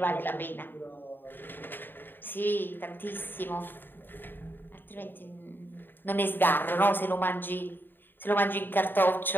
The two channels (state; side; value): late; right; 0.095 ms